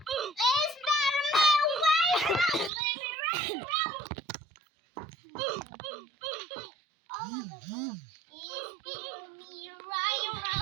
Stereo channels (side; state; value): left; drops out; at 2.7 s